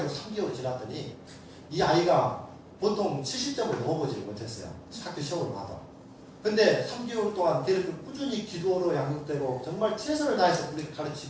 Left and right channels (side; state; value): both; identical; correlation 1.00